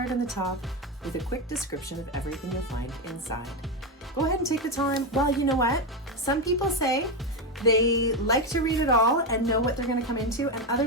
on the top with a quick description of everything you'll find inside. Go ahead and take the time. Well, you know what? Some people say they like to read it all and know what they're going to come into, and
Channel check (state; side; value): normal; both; correlation 0.11